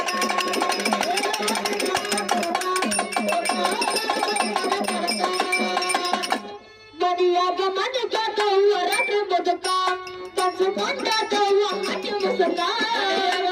ಮನೆಯಾಗ ಮನೆ ಕಾತವ್ವ ರಾತ್ರಿ ಬದುಕ ಕನಸು ಕಂಡಾತವ್ವ ಹಟ್ಟಿ ಮುಸುಕ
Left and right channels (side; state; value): both; identical; correlation 1.00